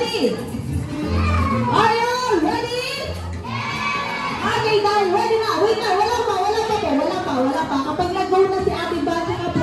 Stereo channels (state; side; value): identical; both; correlation 1.00